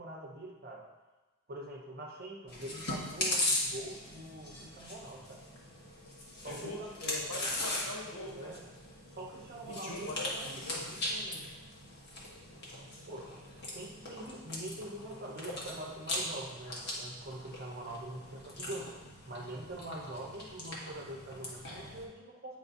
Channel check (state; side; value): normal; both; correlation 0.07